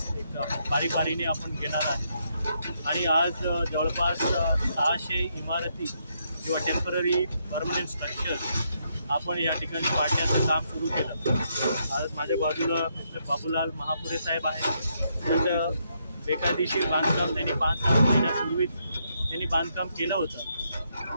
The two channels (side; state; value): both; inverted; correlation -0.77